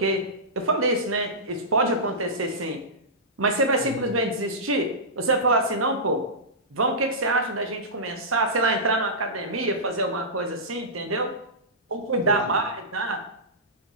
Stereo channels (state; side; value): normal; both; correlation -0.17